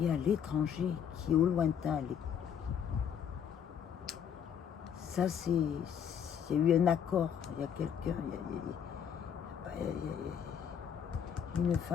est à l'étranger, qui est au lointain. Ça, il y a eu un accord. Il y a quelqu'un, il y a une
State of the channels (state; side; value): quieter; right; 8.1 dB